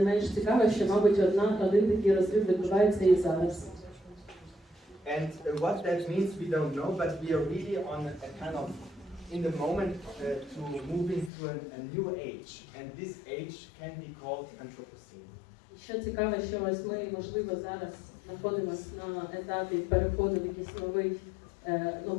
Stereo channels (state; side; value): drops out; right; at 11.3 s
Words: менш цікаво, що, мабуть, один такий розрив відбувається і зараз. And what that means we don't know, but we are really on a kind of in the moment to move into a new age, and this age can be called Anthropocene. Що цікаво, що ось ми, можливо, зараз знаходимося на етапі переходу в якийсь